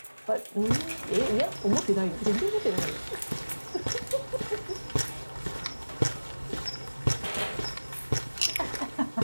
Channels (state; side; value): inverted; both; correlation -1.00